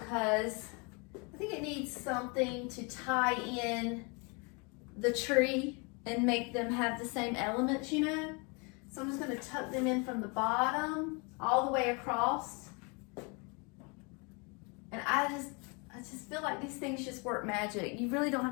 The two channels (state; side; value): quieter; right; 31.5 dB